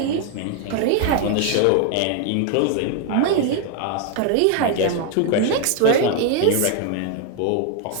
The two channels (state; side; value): different; both; correlation 0.00